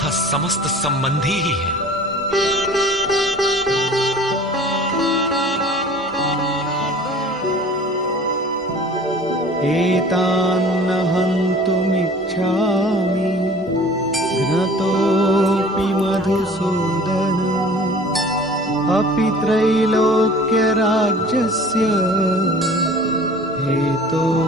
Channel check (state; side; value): normal; both; correlation 0.46